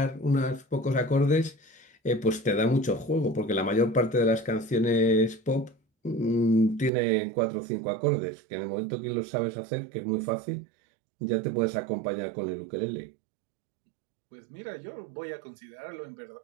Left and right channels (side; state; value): left; drops out; at 6.9 s